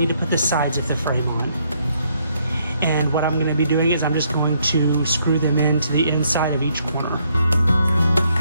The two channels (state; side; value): inverted; both; correlation -0.71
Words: to put the sides of the frame on. And what I'm going to be doing is I'm just going to screw them into the inside of each corner.